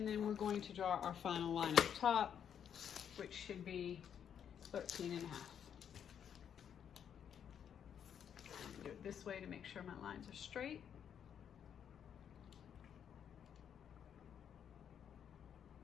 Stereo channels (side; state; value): right; quieter; 8.5 dB